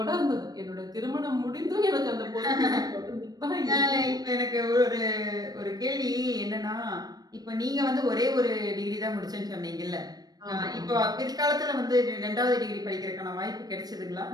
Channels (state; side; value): late; left; 0.19 ms